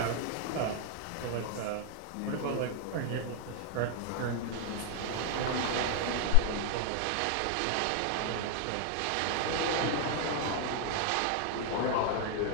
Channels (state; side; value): different; both; correlation 0.00